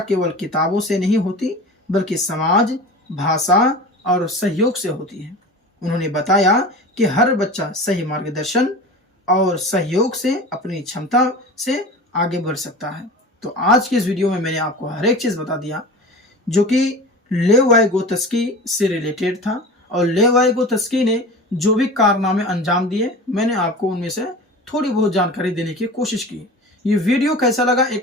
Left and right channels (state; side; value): normal; both; correlation 0.34